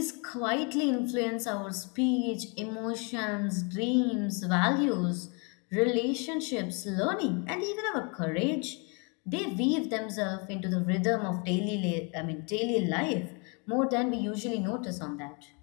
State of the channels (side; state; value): right; quieter; 33.7 dB